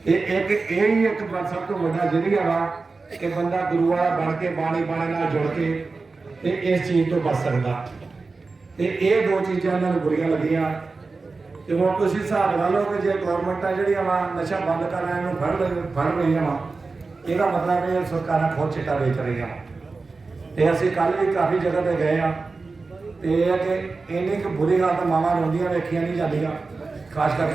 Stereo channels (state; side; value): quieter; left; 4.0 dB